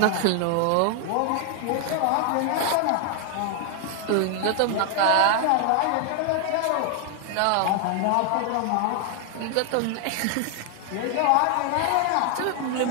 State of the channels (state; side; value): different; both; correlation 0.00